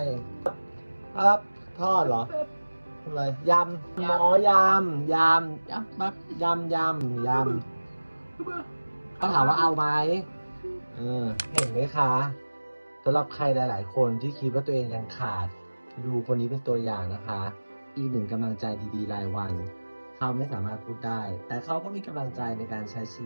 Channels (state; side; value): inverted; both; correlation -1.00